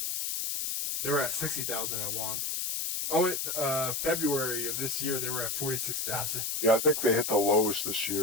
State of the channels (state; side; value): noise; left; hiss, 1 dB below the sound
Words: They were at 60,000 at once. Oh, February of this year, they were at 46,000. Yeah, I think they hit the lowest this